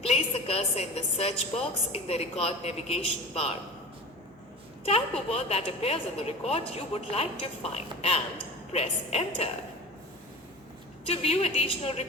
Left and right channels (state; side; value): normal; both; correlation 0.34